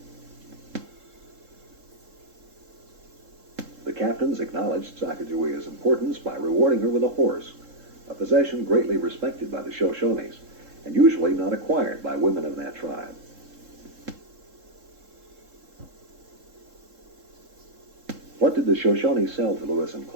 The captains acknowledged Sacagawea's importance by rewarding her with a horse, a possession greatly respected by the Shoshones, and usually not acquired by women of that tribe. What did the Shoshone sell to Lewis and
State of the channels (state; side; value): late; left; 3.7 ms